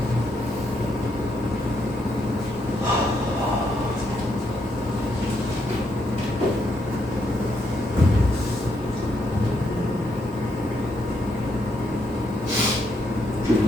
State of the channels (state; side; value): normal; both; correlation 0.77